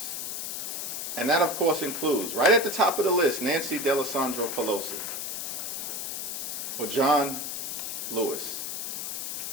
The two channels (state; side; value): noise; left; hiss, 4 dB below the sound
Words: And that, of course, includes, right at the top of the list, Nancy Pelosi, or John Lewis,